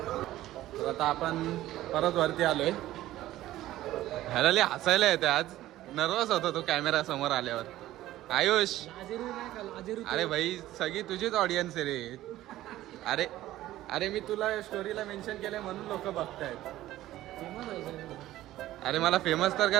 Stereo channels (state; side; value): quieter; left; 14.9 dB